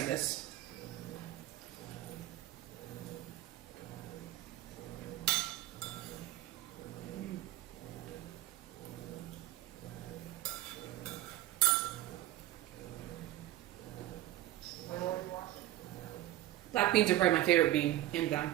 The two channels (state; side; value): quieter; left; 15.0 dB